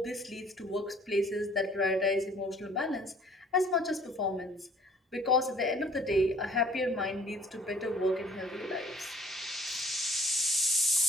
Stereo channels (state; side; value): normal; both; correlation 0.55